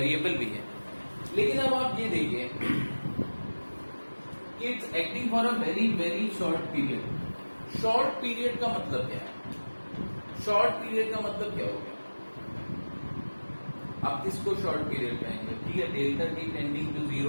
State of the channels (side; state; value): both; inverted; correlation -1.00